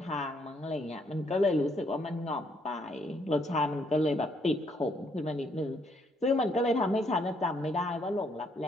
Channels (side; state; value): both; normal; correlation 0.71